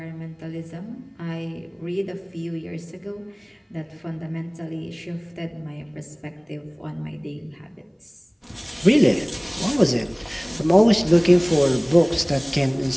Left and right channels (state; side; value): identical; both; correlation 1.00